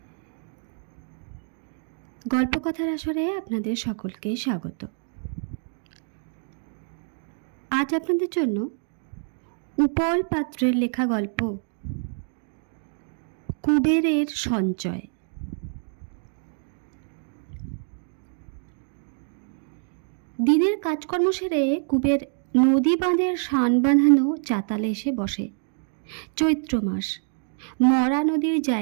গল্পকথার আসরে আপনাদের সকলকে স্বাগত। আজ আপনাদের জন্য উপল পাত্রের লেখা গল্প কুবেরের সঞ্চয়। দিনের কাজকর্ম সেরে কুবের নদী বাঁধের শান বাঁধানো চাতালে এসে বসে। চৈত্র মাস, মরা নদীর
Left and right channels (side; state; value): left; silent; 61 dB below the other